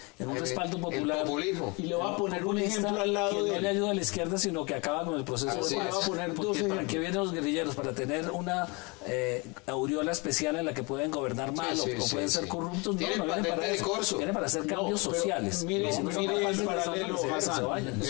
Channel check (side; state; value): right; quieter; 28.6 dB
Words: en un respaldo popular. El populismo. Y le voy a poner un ejemplo al lado que de no le ayuda a la izquierda, sino que acaba con el proceso de Así paz. es. Le voy a poner dos Porque ¿para ejemplos. qué vienen los guerrilleros? Para tener una aureola especial en la que pueden gobernar mal sí, o pueden sí, ser sí. corruptos. No, Tienen no vienen patente para de eso. corso. Vienen para hacer cambios pero sociales. Mire, Y si no son mire capaces el de hacerlo, paralelo, que se Hassan. vayan.